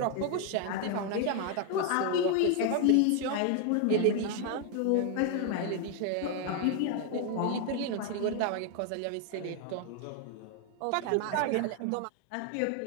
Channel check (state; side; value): different; both; correlation 0.00